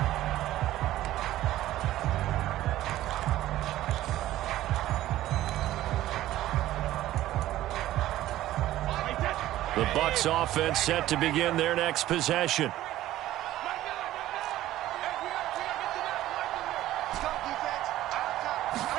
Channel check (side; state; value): left; quieter; 14.5 dB